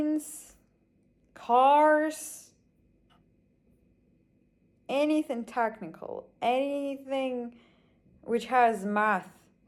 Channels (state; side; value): identical; both; correlation 1.00